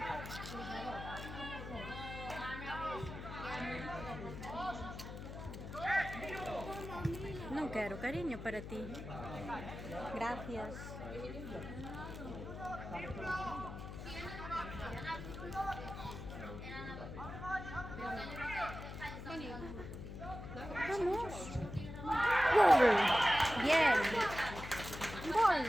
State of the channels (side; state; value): left; noise; hum, 9 dB below the sound